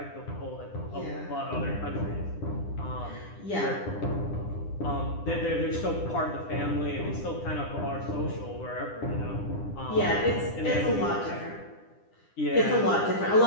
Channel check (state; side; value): late; right; 9.9 ms